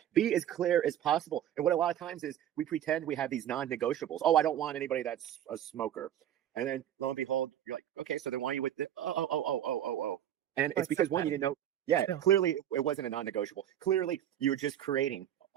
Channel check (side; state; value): left; quieter; 10.9 dB